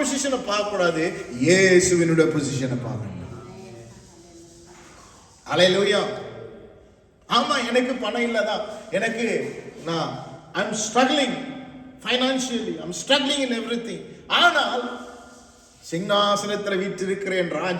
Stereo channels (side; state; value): both; identical; correlation 1.00